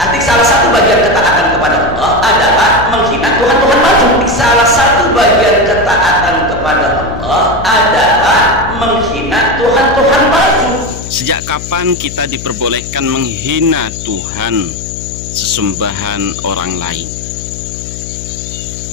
salah satu bagian ketaatan kepada Allah adalah menghina Tuhan-Tuhan palsu. Salah satu bagian ketaatan kepada Allah adalah menghina Tuhan-Tuhan palsu. Sejak kapan kita diperbolehkan menghina Tuhan sesembahan orang lain?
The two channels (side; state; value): left; noise; hum, 11 dB below the sound